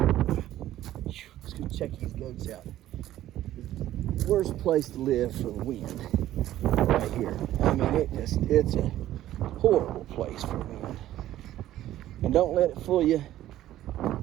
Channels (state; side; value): quieter; left; 13.5 dB